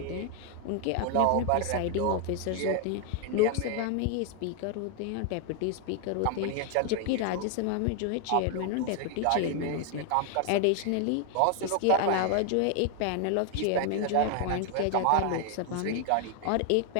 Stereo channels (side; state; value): both; different; correlation 0.00